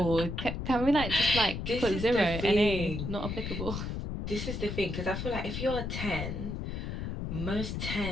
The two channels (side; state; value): left; noise; rumble, 4 dB below the sound